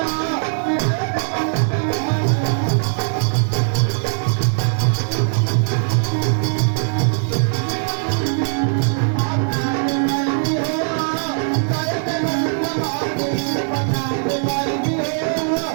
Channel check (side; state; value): left; silent; 63 dB below the other